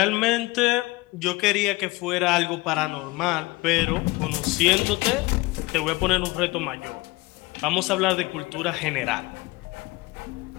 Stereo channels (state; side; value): quieter; right; 22.1 dB